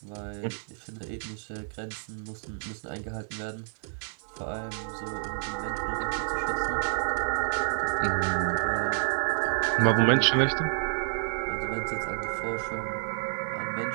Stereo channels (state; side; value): silent; left; 58 dB below the other